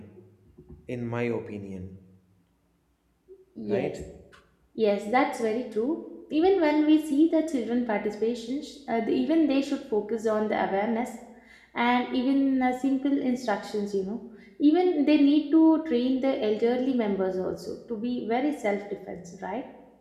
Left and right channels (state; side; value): identical; both; correlation 1.00